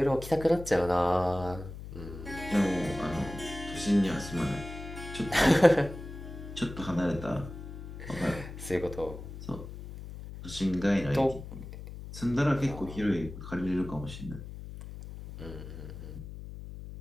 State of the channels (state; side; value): noise; left; hum, 11 dB below the sound